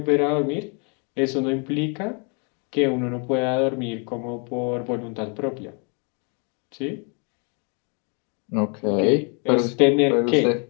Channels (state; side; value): quieter; right; 36.5 dB